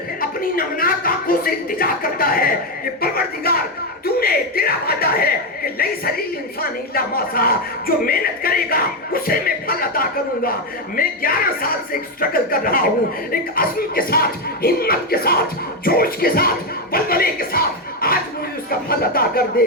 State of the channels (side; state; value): both; normal; correlation 0.07